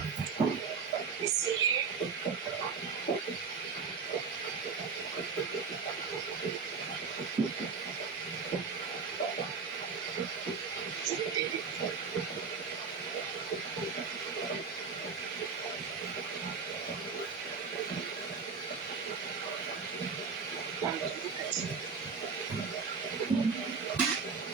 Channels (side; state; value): left; quieter; 5.3 dB